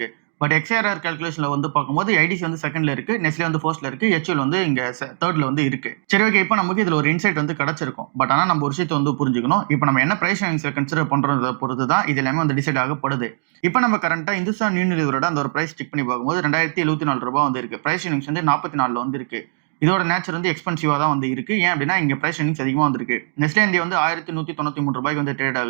பட் XRR கால்குலேஷன்ல வந்து பார்க்கும்போது ஐடிசி வந்து செகண்ட்ல இருக்கு. நெஸ்லே வந்து ஃபர்ஸ்ட்ல இருக்கு. HUL வந்து இங்க தேர்ட்ல வந்து இருக்கு. சரி ஓகே. இப்போ நமக்கு இதுல ஒரு இன்சைட் வந்து கிடைச்சிருக்கும். பட் ஆனா நம்ம ஒரு விஷயத்தை வந்து புரிஞ்சுக்கணும். இப்போ நம்ம என்ன பிரைஸ் ரேஞ்ச்ல கன்சிடர் பண்றத பொறுத்து தான் இது எல்லாமே வந்து டிசைட் ஆகப்படுது. இப்போ நம்ம கரண்டா இந்துஸ்தான் யூனிலிவரோட அந்த ஒரு பிரைஸ் செக் பண்ணி பார்க்கும்போது ரூ. 2074 வந்து இருக்கு. பிரைஸ் ரேஞ்ச் வந்து 44 வந்து இருக்கு. இதோட நேச்சர் வந்து எக்ஸ்பென்சிவா தான் வந்து இருக்கு. ஏன் அப்படின்னா இங்க பிரைஸ் ரேஞ்ச் அதிகமா வந்திருக்கு. நெஸ்லே இந்தியா வந்து ரூ. 1193 வந்து ட்ரேட்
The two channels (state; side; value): silent; left; digital silence